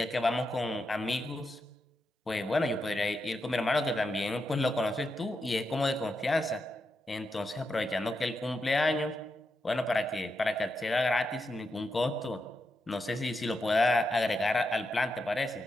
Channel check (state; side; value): normal; both; correlation 0.85